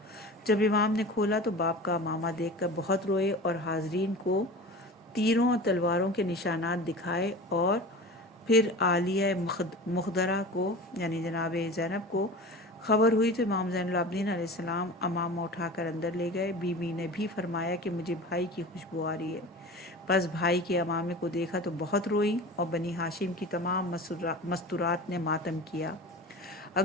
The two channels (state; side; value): normal; both; correlation 0.34